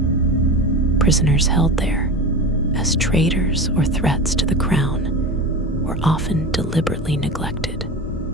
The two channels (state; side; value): normal; both; correlation 0.27